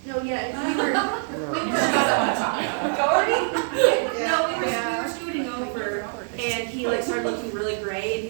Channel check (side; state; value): left; silent; digital silence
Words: No, yeah, we were, Doherty? no, we were And he like started looking really gray, and